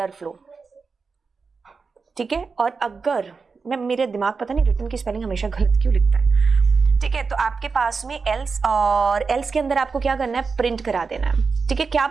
ठीक है, और अगर मेरे दिमाग पता नहीं रिटर्न की स्पेलिंग हमेशा गलत क्यों लिखता है। ठीक है, तो आपके पास में एल्स, और एल्स के अंदर आपको क्या करना है, प्रिंट करा देना है। ठीक है, क्या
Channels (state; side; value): quieter; left; 4.8 dB